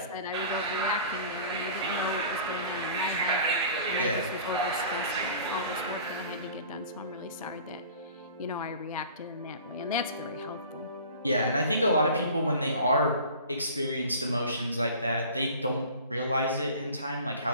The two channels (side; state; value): both; inverted; correlation -0.43